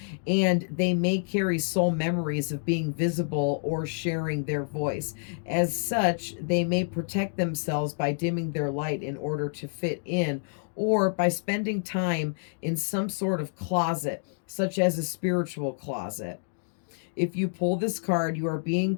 and they may carry soul memories of being visible or sharing their voice. As such, they may protect themselves by dimming their light in order to fit in, or by spending time in some sort of closet, such as a spiritual closet. If you pull this card, you are being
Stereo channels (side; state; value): right; silent; digital silence